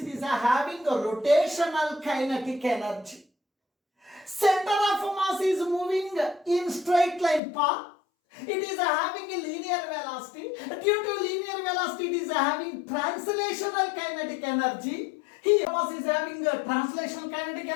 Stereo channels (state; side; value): drops out; right; at 7.4 s